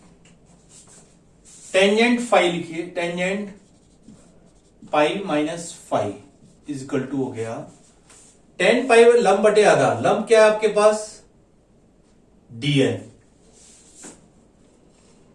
टेंजेंट फाई लिखिए, tangent pi minus 5 is equal to हो गया tan पाई लंब बटे आधा। लंब क्या है आपके पास? dn,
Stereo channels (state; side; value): identical; both; correlation 1.00